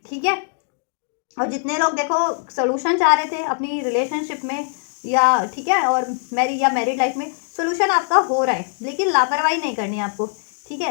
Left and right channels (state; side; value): silent; right; 63 dB below the other